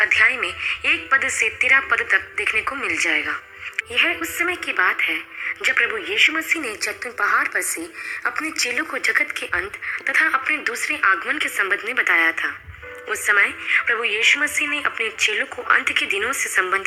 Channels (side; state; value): both; identical; correlation 1.00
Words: में 1 पद से 13 पद तक देखने को मिल जाएगा। यह उस समय की बात है जब प्रभु यीशु मसीह ने जैतून पहाड़ पर से अपने चेलों को जगत के अंत तथा अपने दूसरे आगमन के संबंध में बताया था। उस समय प्रभु यीशु मसीह ने अपने चेलों को अंत के दिनों से